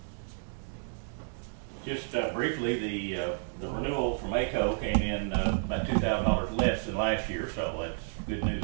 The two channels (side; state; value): left; silent; 57 dB below the other